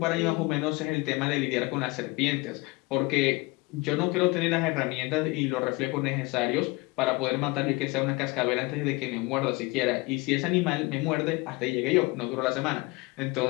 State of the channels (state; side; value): quieter; right; 24.2 dB